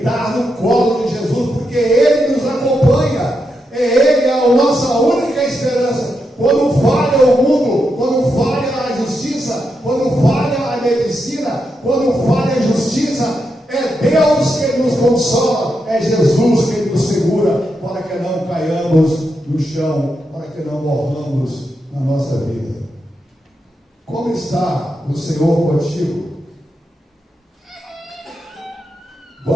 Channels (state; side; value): normal; both; correlation 0.84